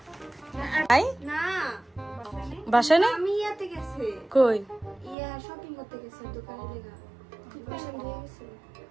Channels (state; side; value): drops out; left; at 5.2 s